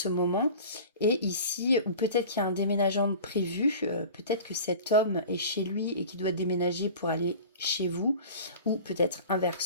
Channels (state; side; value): inverted; both; correlation -0.39